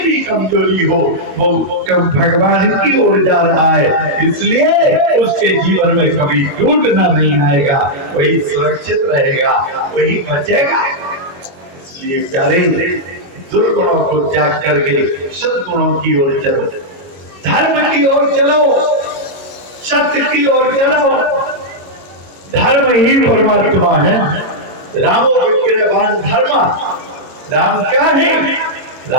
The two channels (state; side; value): late; left; 22 ms